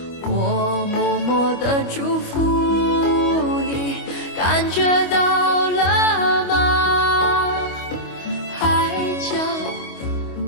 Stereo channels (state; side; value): late; right; 25 ms